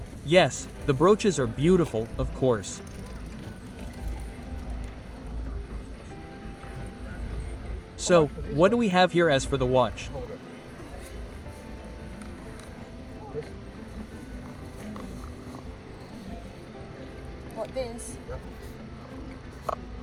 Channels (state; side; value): identical; both; correlation 1.00